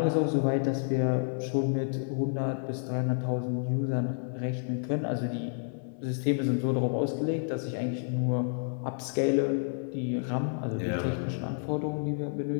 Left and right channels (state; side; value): silent; right; 58 dB below the other